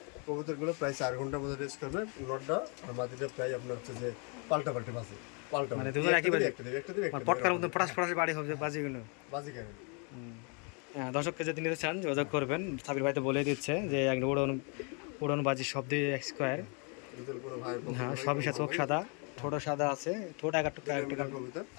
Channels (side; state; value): right; quieter; 35.5 dB